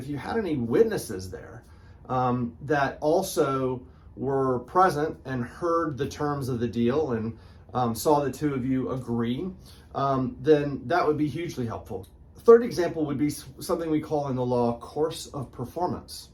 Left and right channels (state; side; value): identical; both; correlation 1.00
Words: you had any witnesses there that also were present and heard the terms of the deal and saw the two of you agree, then that would be hugely helpful. Third example would be something we call in the law course of performance.